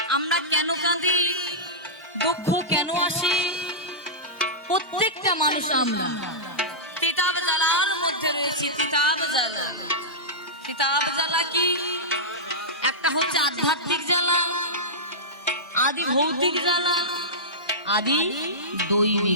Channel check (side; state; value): both; normal; correlation -0.13